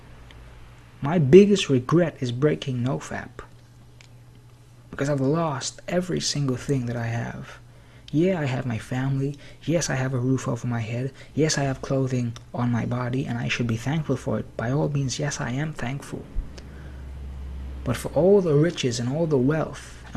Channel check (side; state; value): both; identical; correlation 1.00